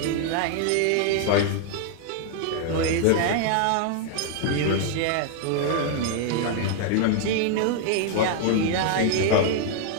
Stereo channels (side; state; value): both; different; correlation 0.00